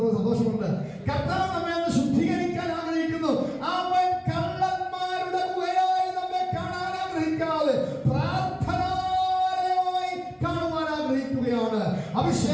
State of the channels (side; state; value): both; identical; correlation 1.00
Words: സന്തോഷമുണ്ട്. കർത്താവ് നമ്മെ ഒന്ന് ശുദ്ധീകരിക്കാൻ ആഗ്രഹിക്കുന്നു. അവൻ കള്ളന്മാരുടെ ഗുഹയായി നമ്മെ കാണാൻ ആഗ്രഹിക്കാതെ പ്രാർത്ഥനാലയമായി കാണുവാൻ ആഗ്രഹിക്കുകയാണ്.